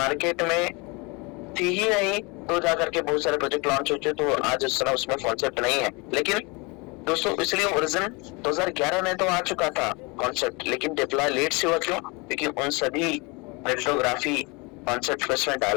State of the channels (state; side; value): quieter; right; 28.0 dB